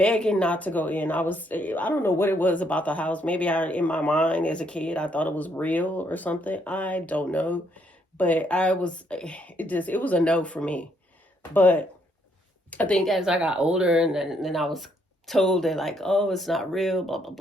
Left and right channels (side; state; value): both; normal; correlation 0.71